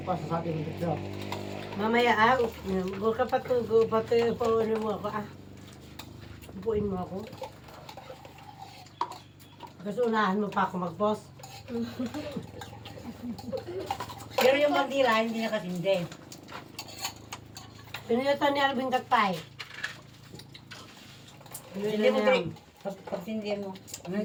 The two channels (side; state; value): both; identical; correlation 1.00